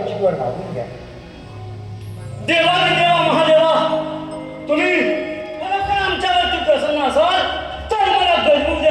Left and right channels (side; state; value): both; identical; correlation 1.00